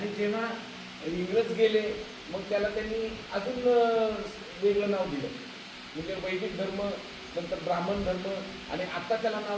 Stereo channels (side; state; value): both; identical; correlation 1.00